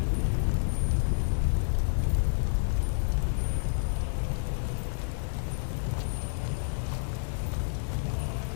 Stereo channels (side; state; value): right; silent; digital silence